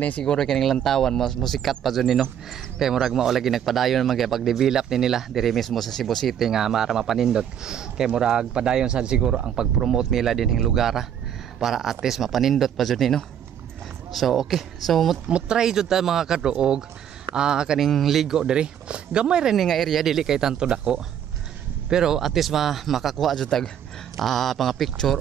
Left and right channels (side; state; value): left; quieter; 9.3 dB